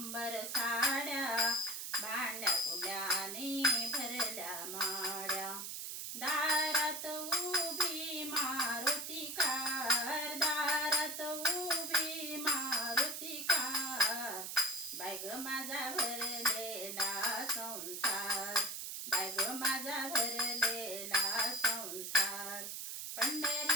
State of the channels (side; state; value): right; noise; hiss, 6 dB below the sound